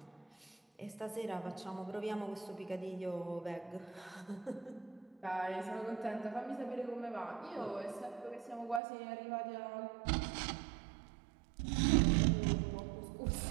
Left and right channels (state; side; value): drops out; left; at 8.8 s